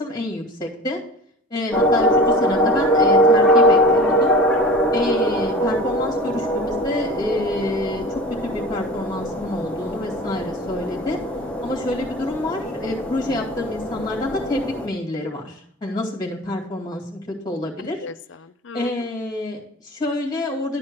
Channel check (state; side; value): normal; both; correlation 0.38